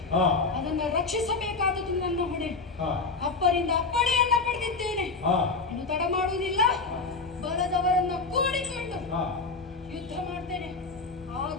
ಅದನ್ನು ರಕ್ಷಿಸಬೇಕಾದದ್ದು ನನ್ನ ಹೊಣೆ. ಅಪ್ಪರಿಂದ ಅಪ್ಪಣೆಯನ್ನ ಪಡೆದಿದ್ದೇನೆ. ಇನ್ನು ತಡ ಮಾಡುವುದಿಲ್ಲ. ಬಲದವರನ್ನ ಕೂಡಿಕೊಂಡು ಯುದ್ಧ ಮಾಡ್ತೇನೆ. ಆ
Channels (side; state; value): right; quieter; 4.1 dB